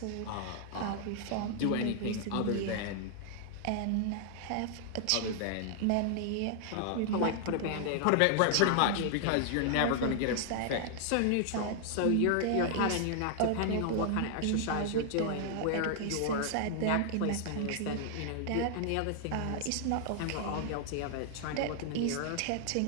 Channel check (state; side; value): different; both; correlation 0.00